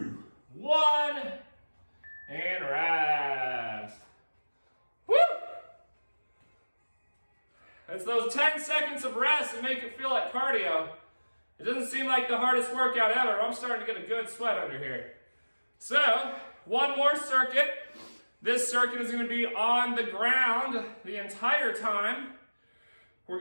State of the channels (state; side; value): inverted; both; correlation -1.00